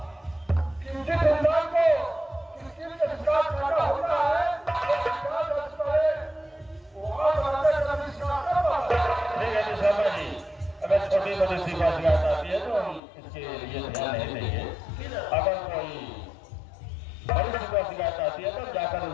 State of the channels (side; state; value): right; drops out; at 13.0 s